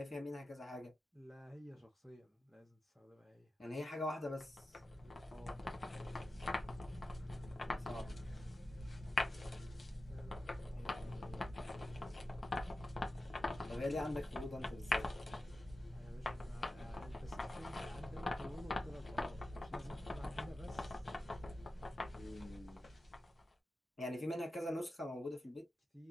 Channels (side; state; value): both; normal; correlation 0.93